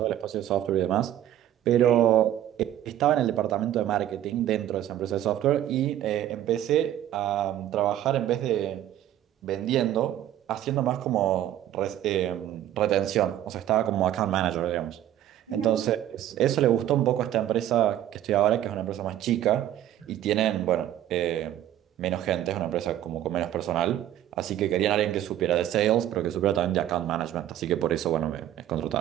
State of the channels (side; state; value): left; quieter; 12.1 dB